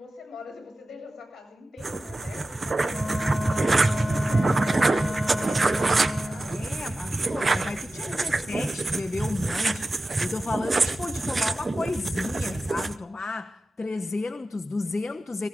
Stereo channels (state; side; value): normal; both; correlation 0.94